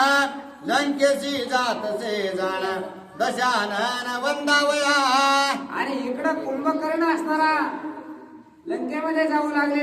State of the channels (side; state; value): both; identical; correlation 1.00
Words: लंकेशी जातसे जाण दशानन वंदावया. आणि इकडं कुंभकर्ण असणारा लंकेमध्ये जाऊ